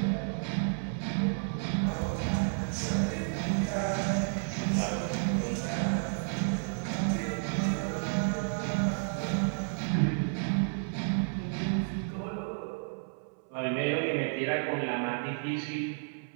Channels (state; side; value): silent; left; 57 dB below the other